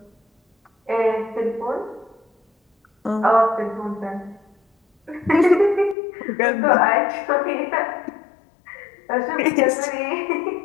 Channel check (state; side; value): drops out; right; at 6.0 s